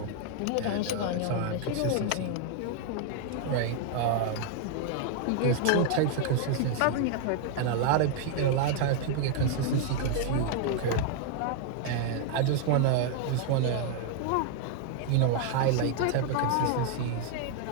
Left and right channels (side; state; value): both; different; correlation 0.00